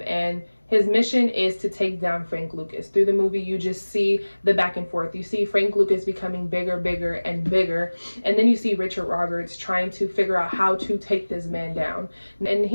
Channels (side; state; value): both; inverted; correlation -1.00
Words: and his mission is to take down Frank Lucas. Through the movie, you just see the back and forth. You see Frank Lucas becoming bigger, bigger, and bigger. And then you see Richard Roberts trying to figure out how to take this man down. And